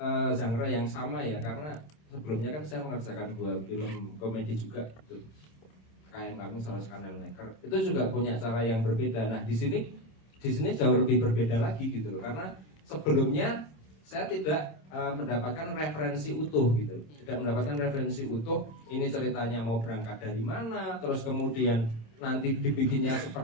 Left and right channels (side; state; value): right; late; 26 ms